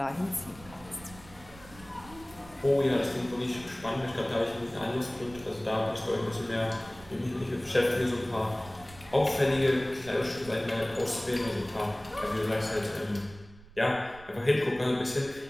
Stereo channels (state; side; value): noise; right; rumble, 20 dB below the sound